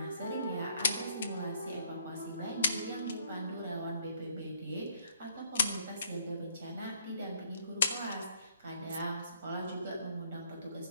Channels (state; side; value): inverted; both; correlation -0.65